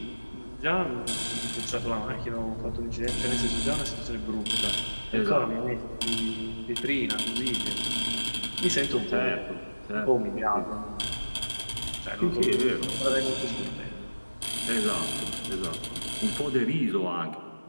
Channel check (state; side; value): inverted; both; correlation -1.00